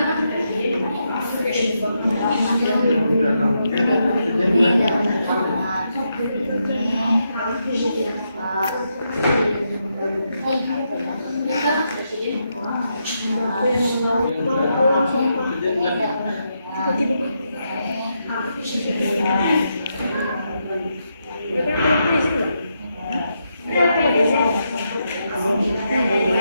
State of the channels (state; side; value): inverted; both; correlation -0.82